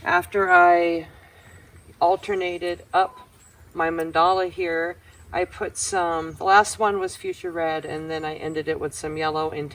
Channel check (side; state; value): both; identical; correlation 1.00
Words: After I alternated up my mandala here, I put some, the last one was fuchsia red, and then I ended it with some yellow and